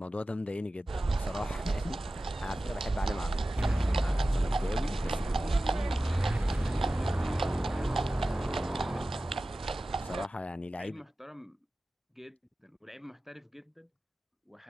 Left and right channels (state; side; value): normal; both; correlation 0.95